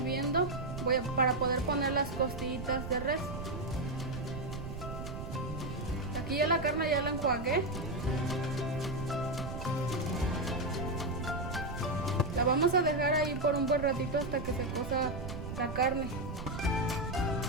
para poder poner las costillitas de res. Aquí ya la carne ya la enjuagué. La vamos a dejar ahí por un buen ratito hasta que se cosa la carne.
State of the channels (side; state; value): right; noise; rumble, 7 dB below the sound